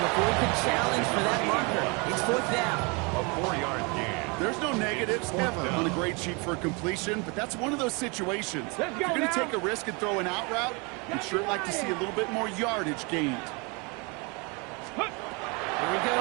he could challenge for that marker. It's 4th down. A 4-yard gain. There's no negatives ever on a grade sheet for a completion, but that's one of those situations. If you're going to take a risk and throw an out route, you'd sure like to see a little bit more yardage gained. Here he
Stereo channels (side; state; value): left; quieter; 30.3 dB